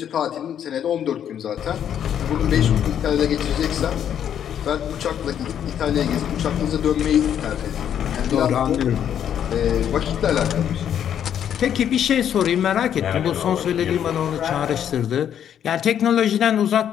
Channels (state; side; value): quieter; right; 9.4 dB